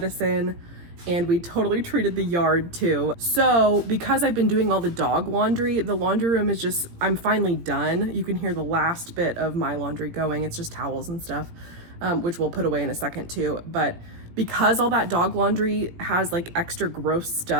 and we totally treated the yard too. So because I've been doing all the dog laundry, the laundry room is just, I'm finally done. You can hear the last bit of my laundry going. It's just towels and stuff, which we'll put away in a second too. But because all that dog laundry has like extra gross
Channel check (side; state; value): left; late; 17 ms